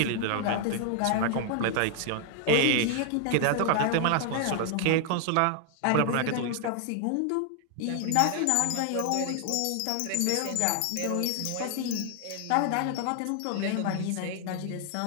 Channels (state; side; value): different; both; correlation 0.00